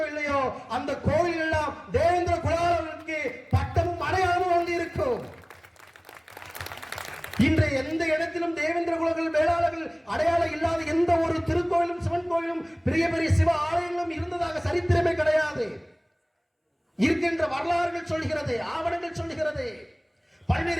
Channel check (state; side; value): identical; both; correlation 1.00